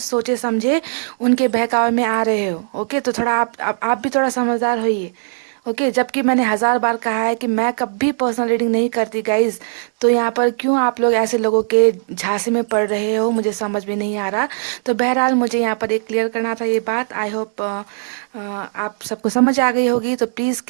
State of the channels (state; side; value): silent; left; digital silence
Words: सोचे समझे उनके बहकावे में आ रहे हो। ओके, तो थोड़ा आप भी थोड़ा समझदार होइए। ओके, जबकि मैंने 1000 बार कहा है कि मैं कभी पर्सनल रीडिंग नहीं करती गाइज। तो यहाँ पर क्यों आप लोग ऐसे लोगों के झांसे में पड़ रहे हो, मुझे समझ में नहीं आ रहा। तो बहरहाल मुझे यहाँ पर एक क्लियर करना था ये बात। आई होप आप सबको समझ आ गई होगी। तो प्लीज़